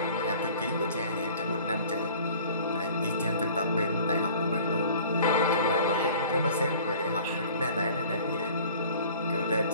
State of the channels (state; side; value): inverted; both; correlation -0.48